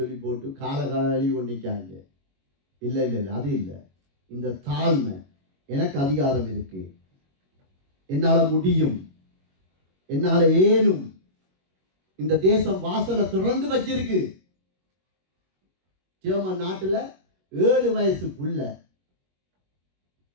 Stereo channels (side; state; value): left; late; 21 ms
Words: போட்டு கால கழுவி கொண்டிருக்காங்க. இல்லை, அது இல்லை. இந்த தாழ்மை, எனக்கு அதிகாரம் இருக்கு, என்னால முடியும், என்னால ஏனும், இந்த தேசம் வாசலை திறந்து வச்சிருக்கு. ஜெர்மன் நாட்டுல 7 வயசு புள்ள,